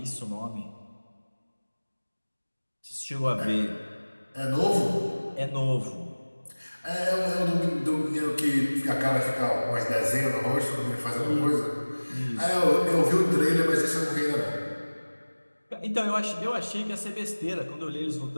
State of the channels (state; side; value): inverted; both; correlation -1.00